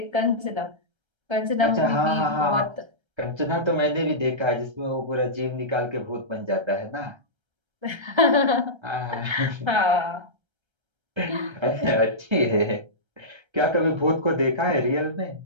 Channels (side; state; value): left; late; 1.3 ms